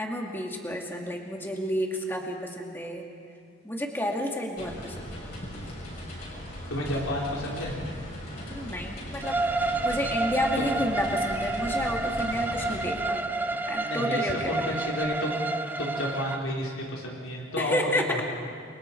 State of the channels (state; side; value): normal; both; correlation 0.59